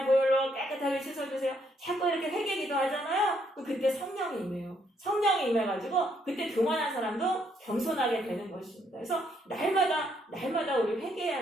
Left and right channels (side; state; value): both; normal; correlation 0.72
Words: 보혈로 깨끗하게 씻어주세요. 자꾸 이렇게 회개 기도하잖아요. 그때 성령이 임해요. 성령이 임해가지고 그때 교만한 사람도 겸손하게 되는 것입니다. 그래서 날마다 우리